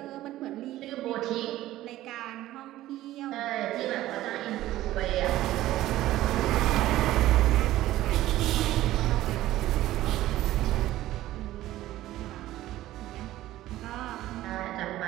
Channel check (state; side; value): quieter; left; 15.1 dB